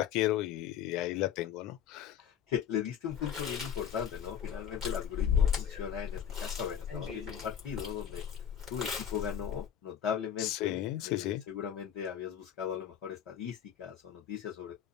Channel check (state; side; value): quieter; right; 9.2 dB